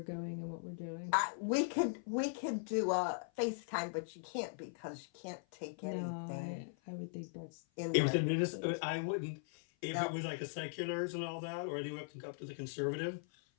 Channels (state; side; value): silent; right; 51 dB below the other